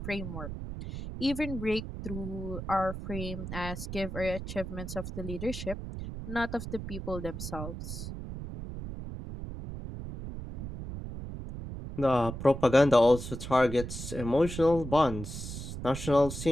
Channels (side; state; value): right; noise; rumble, 8 dB below the sound